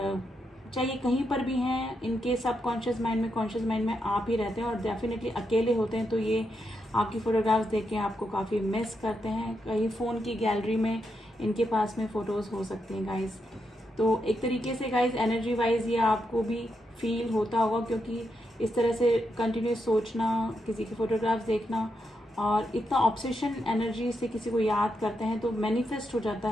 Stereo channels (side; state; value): both; normal; correlation 0.83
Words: चाहिए कहीं पर भी हैं, इनके सबकॉन्शियस माइंड में, कॉन्शियस माइंड में आप ही रहते हैं, और डेफिनेटली अकेले होते हैं तो ये आपकी फ़ोटोग्राफ्स देख के आपको काफ़ी मिस करते हैं। कहीं फ़ोन की गैलरी में इनके पास में फ़ोटोज़ हो सकती हैं गाइज़। तो एक तरीके से गाइज़ एनर्जी वाइज ये आपको भी फील होता होगा, क्योंकि इस तरह से कंटिन्यूस सोचना, किसी की फ़ोटोग्राफ्स देखना, और इतना ऑब्सेशन एनर्जी से किसी को याद करते हैं तो मैनिफेस्ट हो जाता